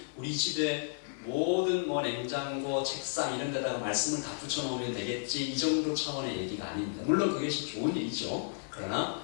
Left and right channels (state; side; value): silent; right; 56 dB below the other